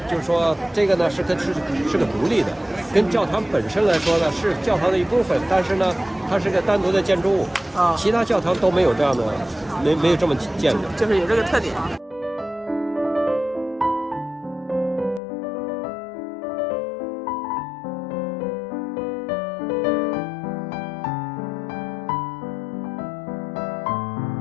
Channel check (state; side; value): drops out; right; at 15.2 s